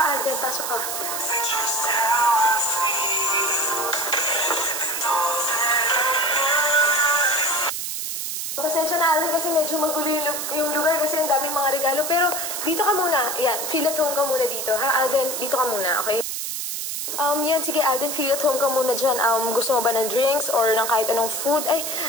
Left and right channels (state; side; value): noise; right; hiss, 4 dB below the sound